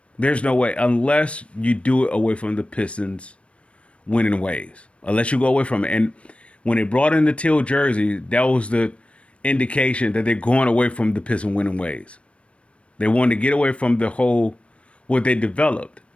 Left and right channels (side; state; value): right; late; 0.061 ms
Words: There's no way unless you do it away from the Pistons winning ways. Unless you go away from it. And when they brought in the teal jersey, that was the indication that they're going away from the Pistons winning ways. They wanted to get away from the whole what they developed.